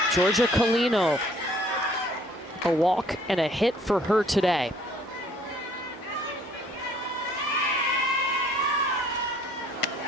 Georgia Colino, a walk and a hit for her today.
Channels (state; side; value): normal; both; correlation 0.59